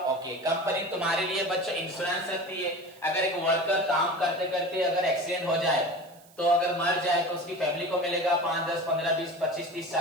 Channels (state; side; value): noise; right; hiss, 26 dB below the sound